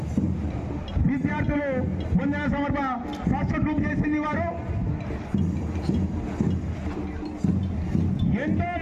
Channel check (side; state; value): both; identical; correlation 1.00